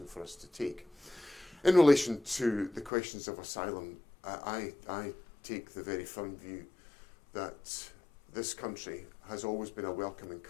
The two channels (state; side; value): drops out; right; at 2.9 s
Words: for us to take. In relation to the questions of asylum, I take the very firm view that this country has always been a welcoming